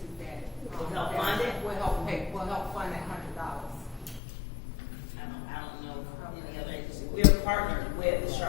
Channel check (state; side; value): drops out; right; at 4.2 s